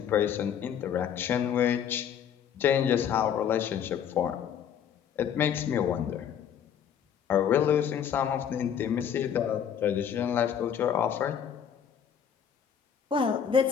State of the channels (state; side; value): quieter; right; 8.5 dB